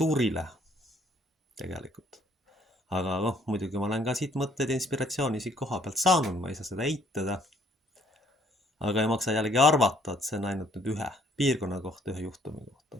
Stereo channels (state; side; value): normal; both; correlation 0.63